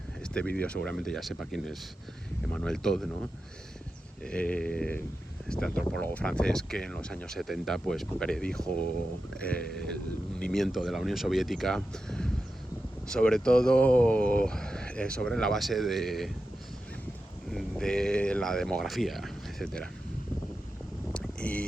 este vídeo seguramente ya sepa quién es Emmanuel Todd, ¿no? Este antropólogo francés que en los años 70 pues predijo el hundimiento de la Unión Soviética, sobre todo sobre la base de la demografía, etcétera,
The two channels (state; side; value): normal; both; correlation 0.91